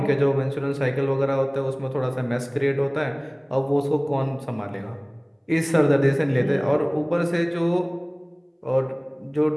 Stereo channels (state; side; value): identical; both; correlation 1.00